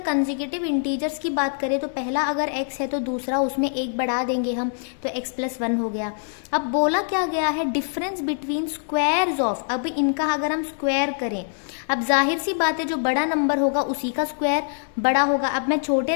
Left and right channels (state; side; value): silent; right; 63 dB below the other